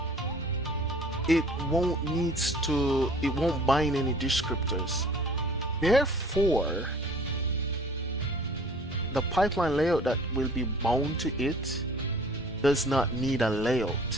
it won't bind any descriptors. Therefore, the pipeline layout that will be bound to it does not need a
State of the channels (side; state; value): both; normal; correlation 0.50